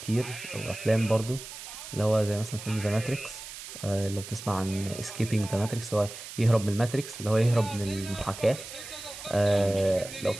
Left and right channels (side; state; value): right; noise; hiss, 12 dB below the sound